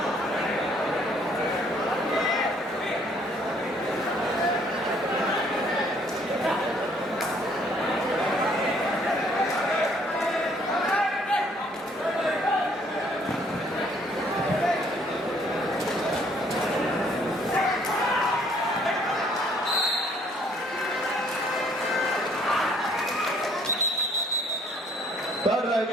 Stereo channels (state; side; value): normal; both; correlation 0.63